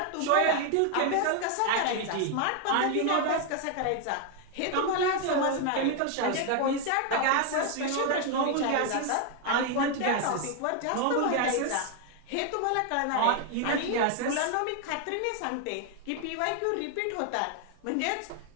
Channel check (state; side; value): different; both; correlation 0.01